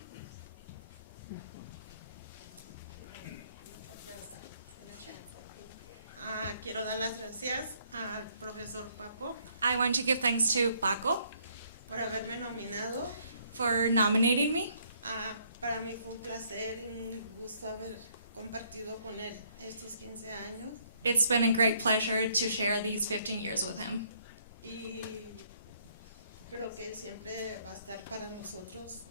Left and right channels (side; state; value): both; inverted; correlation -0.67